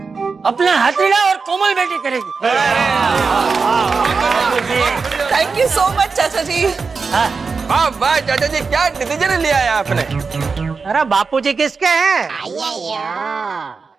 अपना हाथीड़ा और कोमल बेटी करेगी। थैंक यू सो मच चाचा जी। हाँ। वाह वाह चाचा जी, क्या डिसीजन लिया है आपने? अरे बापूजी किसके हैं?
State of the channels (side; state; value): left; quieter; 4.8 dB